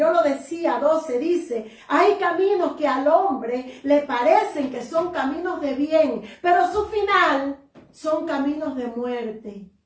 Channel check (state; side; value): identical; both; correlation 1.00